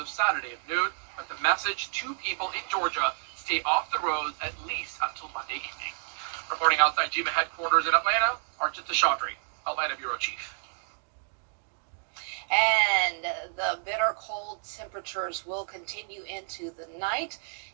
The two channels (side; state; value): left; silent; 58 dB below the other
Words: Saturday at noon, but the message to people in Georgia: stay off the roads at least until Monday evening. Reporting outside GMA headquarters in Atlanta, Arjun Seshadri, Atlanta Bureau Chief. And the bitter cold temperatures will continue into the night.